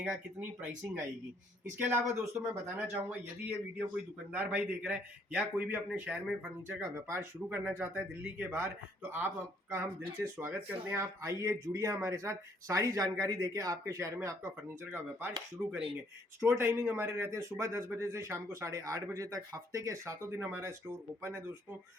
कितनी प्राइसिंग आएगी। इसके अलावा दोस्तों मैं बताना चाहूंगा, यदि ये वीडियो कोई दुकानदार भाई देख रहा है या कोई भी अपने शहर में फर्नीचर का व्यापार शुरू करना चाहता है दिल्ली के बाहर, तो आपका हम दिल से स्वागत करते हैं। आप आइए, जुड़िए हमारे साथ, सारी जानकारी देके आपके शहर में आपका फर्नीचर का व्यापार शुरू करेंगे। स्टोर टाइमिंग हमारे रहते हैं सुबह 10 बजे से शाम को 8:30 बजे तक। हफ्ते के 7 दिन हमारा स्टोर ओपन है दोस्तों।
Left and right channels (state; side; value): normal; both; correlation 0.66